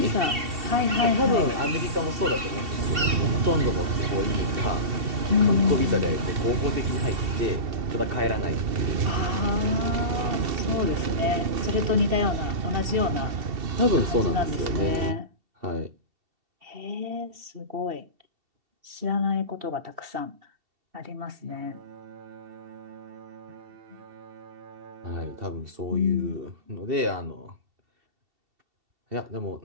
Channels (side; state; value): left; late; 2.7 ms